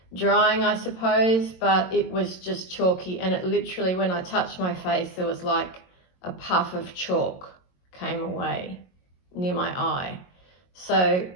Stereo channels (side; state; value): right; late; 22 ms